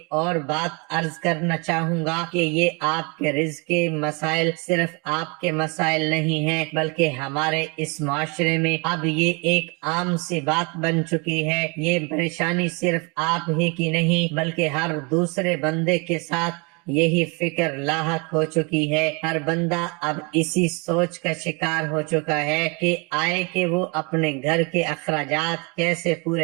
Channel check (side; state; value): left; quieter; 31.0 dB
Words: اور بات عرض کرنا چاہوں گا کہ یہ آپ کے رزق کے مسائل صرف آپ کے مسائل نہیں ہیں، بلکہ ہمارے اس معاشرے میں اب یہ ایک عام سی بات بن چکی ہے۔ یہ پریشانی صرف آپ ہی کی نہیں بلکہ ہر دوسرے بندے کے ساتھ یہی فکر لاحق ہو چکی ہے۔ ہر بندہ اب اسی سوچ کا شکار ہو چکا ہے کہ آئے کہ وہ اپنے گھر کے اخراجات کیسے